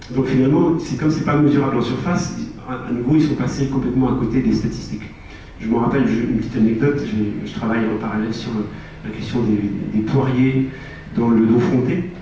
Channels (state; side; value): identical; both; correlation 1.00